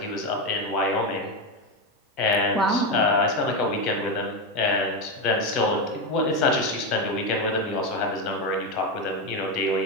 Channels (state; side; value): normal; both; correlation 0.12